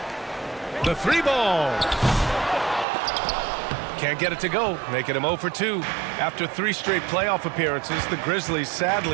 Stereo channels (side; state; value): left; drops out; at 2.9 s